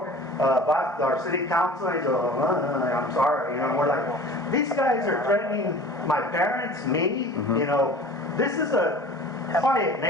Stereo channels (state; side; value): normal; both; correlation 0.42